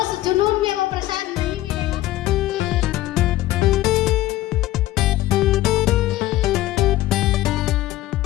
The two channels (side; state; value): right; quieter; 15.8 dB